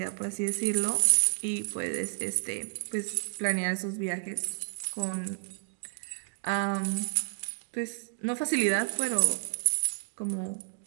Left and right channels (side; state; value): left; silent; digital silence